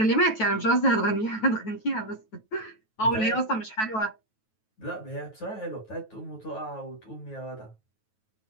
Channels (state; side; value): late; right; 9.2 ms